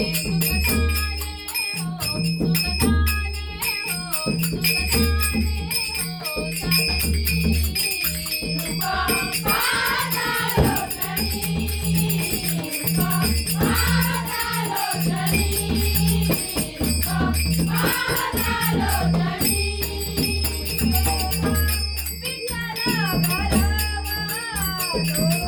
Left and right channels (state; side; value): identical; both; correlation 1.00